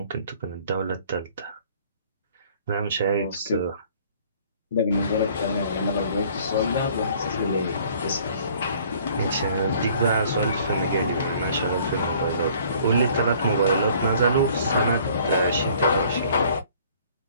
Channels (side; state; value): both; inverted; correlation -0.56